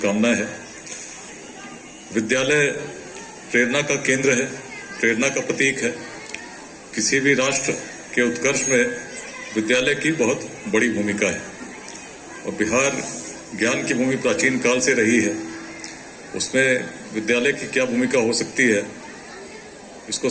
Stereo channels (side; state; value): both; identical; correlation 1.00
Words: है। विद्यालय प्रेरणा का केंद्र है, प्रेरणा का प्रतीक है। किसी भी राष्ट्र के उत्कर्ष में विद्यालय की बहुत बड़ी भूमिका है और बिहार ज्ञान की भूमि प्राचीन काल से रही है। उसमें विद्यालय की क्या भूमिका हो सकती है इसको